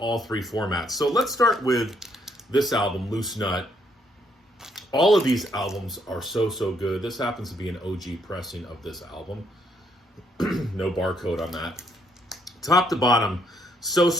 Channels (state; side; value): normal; both; correlation 0.71